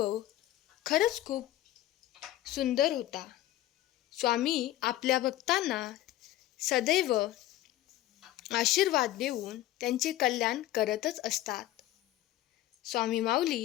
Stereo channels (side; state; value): right; quieter; 14.4 dB